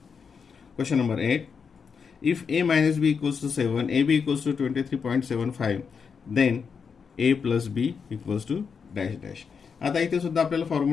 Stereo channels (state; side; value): quieter; right; 6.0 dB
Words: Question number 8 if a minus b equals to 7, ab equals to 23.75, then a plus b equals to dash dash. आता इथे सुद्धा आपल्याला